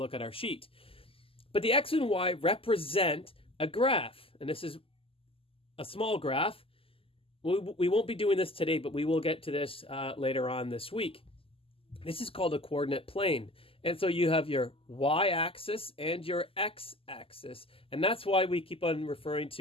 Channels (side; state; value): right; late; 0.26 ms